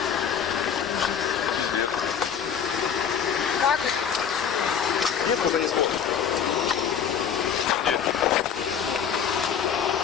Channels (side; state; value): right; quieter; 7.8 dB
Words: Как это? Нет, когда не смотрит. Где?